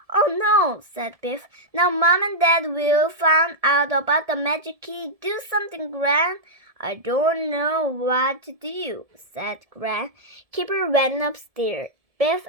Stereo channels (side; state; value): left; late; 1.7 ms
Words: Oh no, said Biff. Now Mom and Dad will find out about the magic key. Do something, Gran. I don't know what to do, said Gran. Kipper went upstairs. Biff